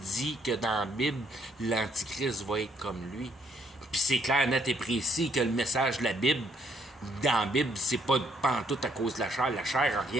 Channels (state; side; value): normal; both; correlation 0.70